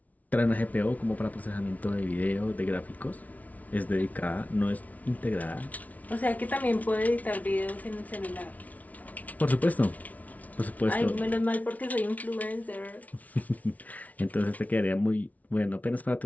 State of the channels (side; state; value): right; late; 0.072 ms